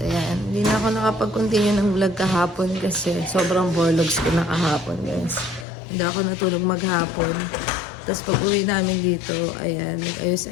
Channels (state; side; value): drops out; right; at 5.7 s